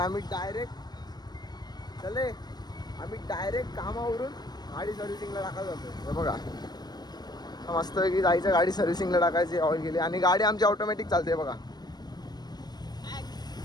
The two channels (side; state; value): right; late; 0.19 ms